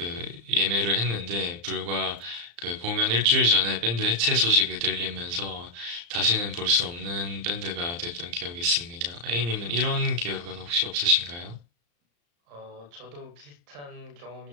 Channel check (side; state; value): left; late; 35 ms